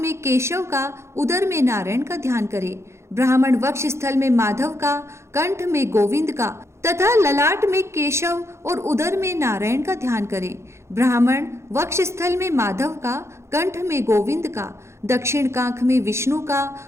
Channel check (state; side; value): late; left; 0.13 ms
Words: केशव का, उदर में नारायण का ध्यान करे। ब्राह्मण वक्ष स्थल में माधव का, कंठ में गोविंद का तथा ललाट में केशव और उदर में नारायण का ध्यान करें। ब्राह्मण वक्ष स्थल में माधव का, कंठ में गोविंद का, दक्षिण कांख में विष्णु का,